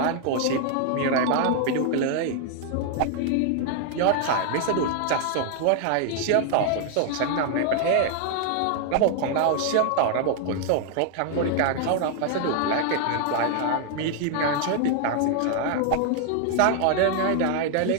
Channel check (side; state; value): both; different; correlation 0.00